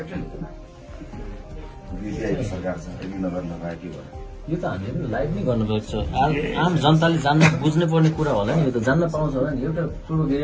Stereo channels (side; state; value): both; identical; correlation 1.00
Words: सरकार छ नगर लगायो के भयो यो त हामीले लाइभ नै गर्नुपर्छ आम जनताले जान्न बुझ्नै पर्ने कुरा होला नि यो त जान्न पाउँछ होला नि एउटा पूर्व